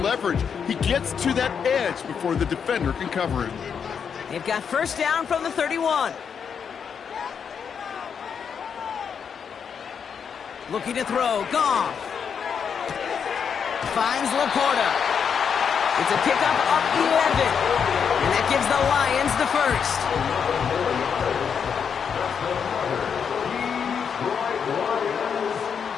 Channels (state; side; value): quieter; right; 7.0 dB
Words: leverage. He gets to that edge before the defender can cover him. They've got first down from the 31. Looking to throw, Goff. Finds Laporta. It's a pickup of 11. And that gives the Lions the first.